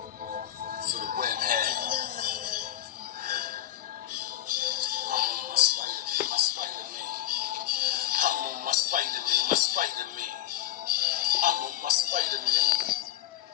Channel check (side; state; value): right; quieter; 12.9 dB